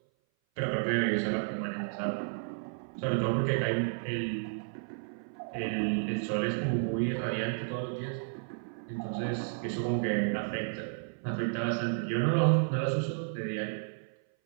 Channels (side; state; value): left; silent; 56 dB below the other